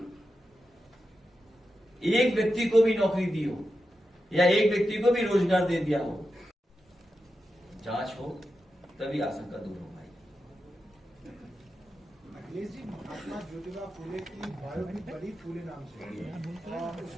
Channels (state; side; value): normal; both; correlation 0.90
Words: एक व्यक्ति को भी नौकरी दी हो, या एक व्यक्ति को भी रोजगार दे दिया हो, जांच हो, तभी आशंका दूर हो पाएगी। अखिलेश जी, महात्मा ज्योतिबा फूले की बायो भी बड़ी फूले नाम से है, और